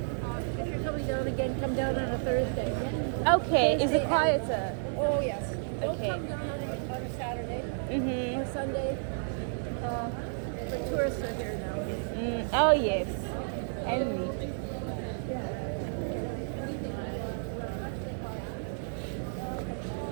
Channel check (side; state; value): left; silent; digital silence